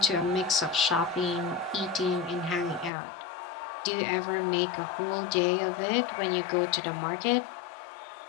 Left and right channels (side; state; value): right; drops out; at 2.9 s